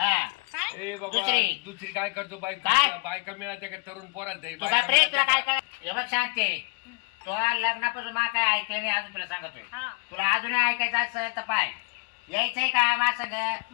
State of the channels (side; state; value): right; quieter; 32.7 dB